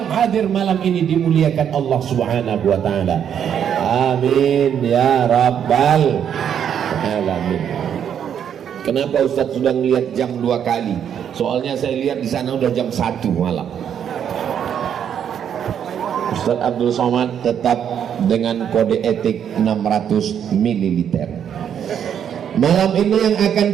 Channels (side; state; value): left; quieter; 8.7 dB